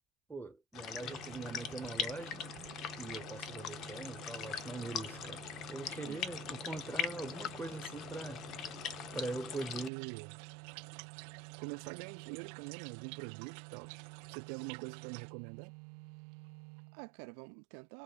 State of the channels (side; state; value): left; drops out; at 9.9 s